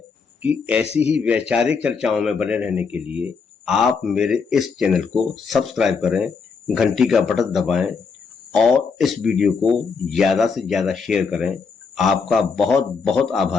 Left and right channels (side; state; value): right; quieter; 5.3 dB